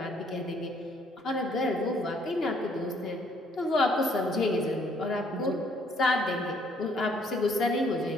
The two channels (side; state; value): both; normal; correlation 0.65